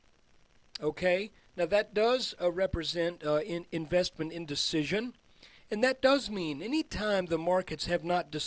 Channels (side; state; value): both; identical; correlation 1.00